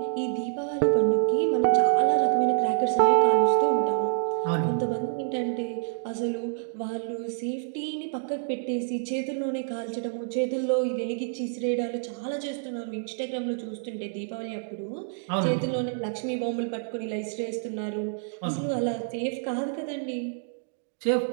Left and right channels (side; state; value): left; silent; digital silence